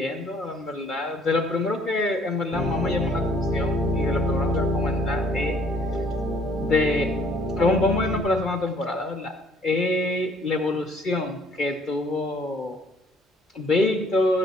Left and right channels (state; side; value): normal; both; correlation 0.60